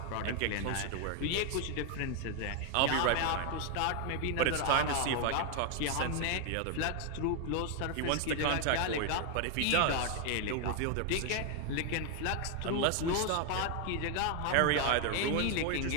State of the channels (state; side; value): different; both; correlation 0.01